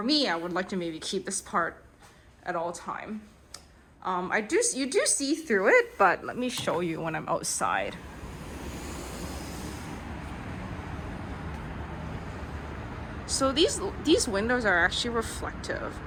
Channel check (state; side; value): identical; both; correlation 1.00